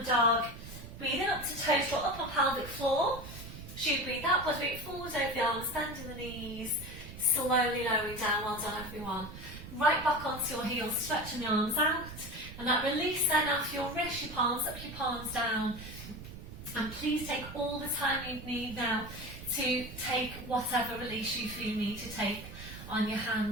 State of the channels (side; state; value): right; noise; rumble, 12 dB below the sound